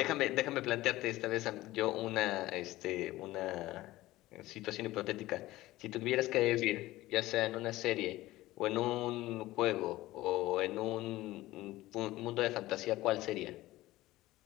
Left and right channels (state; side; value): quieter; right; 17.3 dB